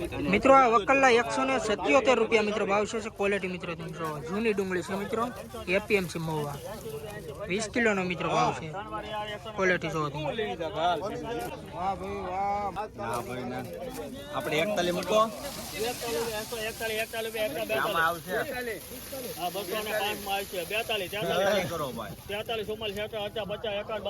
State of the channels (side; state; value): both; identical; correlation 1.00